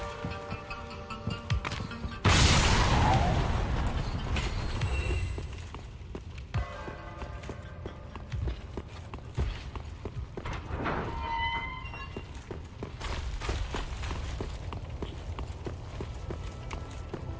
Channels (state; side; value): identical; both; correlation 1.00